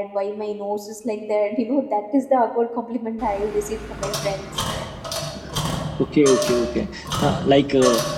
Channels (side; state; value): both; identical; correlation 1.00